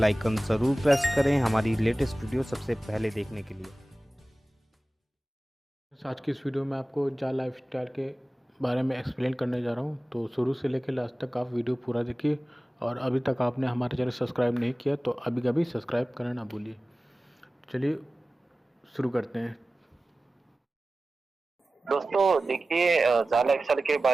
आइकन ज़रूर प्रेस करें हमारी लेटेस्ट वीडियो सबसे पहले देखने के लिए। आज की इस वीडियो में आपको जा लाइफस्टाइल के बारे में एक्सप्लेन करने जा रहा हूं, तो शुरू से लेकर लास्ट तक आप वीडियो पूरा देखिए। और अभी तक आपने हमारे चैनल सब्सक्राइब नहीं किया तो अभी कभी सब्सक्राइब करना ना भूलिए। चलिए शुरू करते हैं। दोस्तों देखिए, झा लाइफस्टाइल के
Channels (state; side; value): normal; both; correlation 0.96